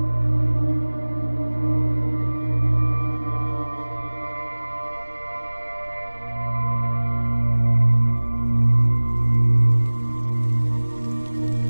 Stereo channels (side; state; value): both; inverted; correlation -1.00